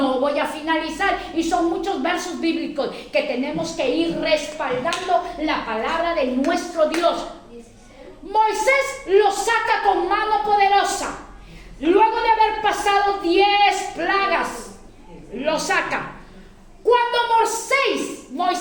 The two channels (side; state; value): both; identical; correlation 1.00